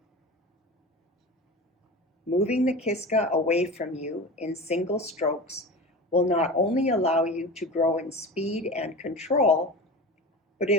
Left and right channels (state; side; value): normal; both; correlation 0.31